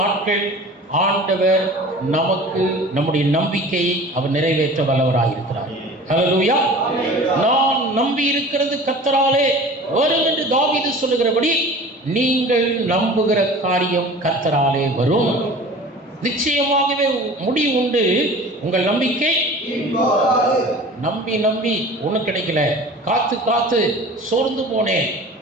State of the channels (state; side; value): normal; both; correlation 0.41